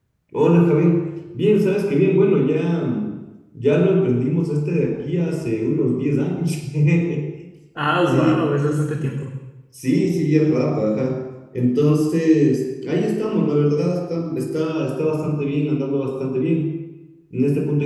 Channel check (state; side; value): identical; both; correlation 1.00